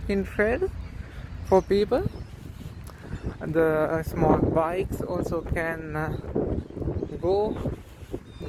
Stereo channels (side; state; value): both; identical; correlation 1.00